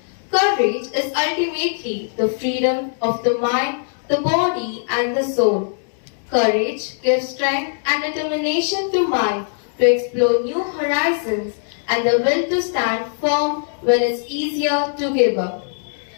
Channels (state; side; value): silent; right; digital silence